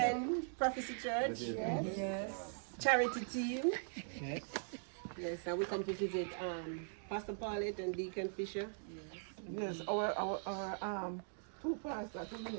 Prophecy Church. Yes. Charity team. Yes, and we come to visit Pastor Paulette and Deacon Fisher. Yes, our Two pastors, two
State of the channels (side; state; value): left; silent; digital silence